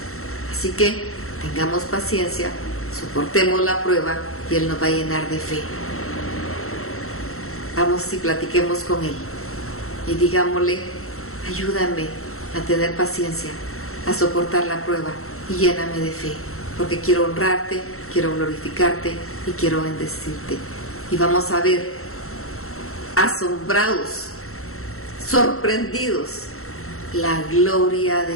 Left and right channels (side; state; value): right; late; 0.63 ms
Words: Así que tengamos paciencia, soportemos la prueba y Él nos va a llenar de fe. Vamos y platiquemos con Él y digámosle: ayúdame a tener paciencia, a soportar la prueba y lléname de fe, porque quiero honrarte, quiero glorificarte y quiero bendecirte. Y vamos a ver, asombrados, sorprendidos, la gloria